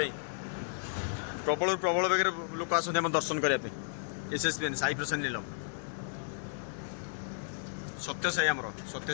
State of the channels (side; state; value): right; silent; digital silence